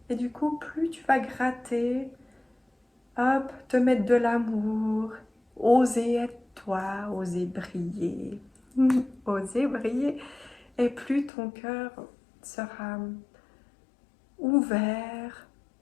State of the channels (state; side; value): drops out; right; at 11.3 s